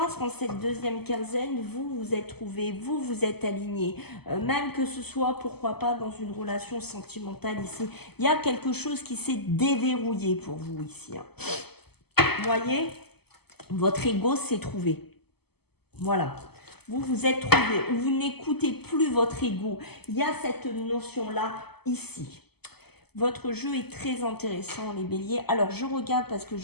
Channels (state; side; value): late; right; 0.97 ms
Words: qu'en cette deuxième quinzaine, vous vous êtes trouvés, vous vous êtes alignés. Même que ce soit, pourquoi pas, dans une relation sentimentale ici. Il y a quelque chose qui s'est déverrouillé pour vous ici. Hein. Vous voyez, votre ego s'est trouvé. Voilà. Vous vous êtes trouvé, ou vous n'écoutez plus votre ego. Il y a cette notion-là ici. Votre jeu est très intéressant, les béliers. Alors, je regarde parce que